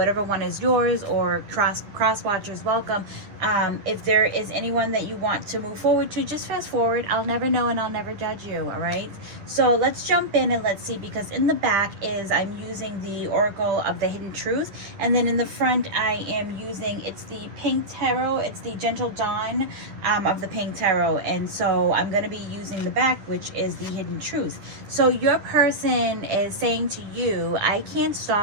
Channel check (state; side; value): late; left; 10 ms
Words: one is yours, or cross watchers, welcome. If there is anyone that you want to move forward to, just fast forward. I'll never know and I'll never judge you, all right? So let's jump in and let's see, because in the back is I'm using the Oracle of the Hidden Truth, and then in the front I am using, it's the Pink Tarot, it's the Gentle Dawn of the Pink Tarot, and so I'm going to be using the back, which is the Hidden Truth. So your person is saying to you, I can't